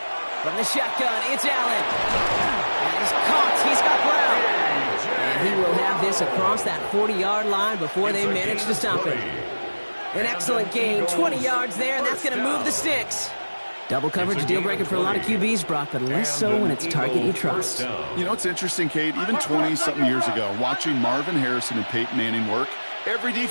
From the shotgun, it's Allen. And he's caught. He's got Brown. And he will have this across that 40-yard line before they manage to stop him. An excellent gain. 20 yards there, and that's going to move the sticks. Double coverage, deal breaker for a lot of QBs, Brock, but less so when it's target you trust. You know, it's interesting, Kate. Even 20-something years ago, watching Marvin Harrison and Peyton Manning work, every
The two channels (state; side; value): inverted; both; correlation -1.00